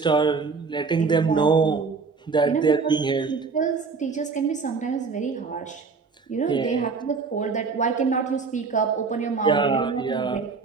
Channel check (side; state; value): left; quieter; 4.8 dB